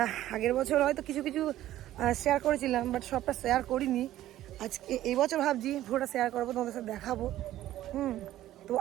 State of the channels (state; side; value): quieter; left; 13.8 dB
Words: আগের বছর হয়তো কিছু কিছু শেয়ার করেছিলাম, বাট সবটা শেয়ার করিনি। আজকে এই বছর ভাবছি পুরোটা শেয়ার করবো, তোমাদের সাথে দেখাবো। তো